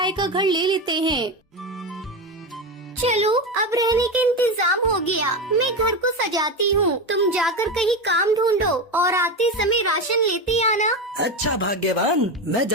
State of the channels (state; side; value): normal; both; correlation 0.17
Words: का घर ले लेते हैं। चलो, अब रहने का इंतजाम हो गया। मैं घर को सजाती हूँ, तुम जाकर कहीं काम ढूंढो और आते समय राशन लेते आना। अच्छा भाग्यवान, मैं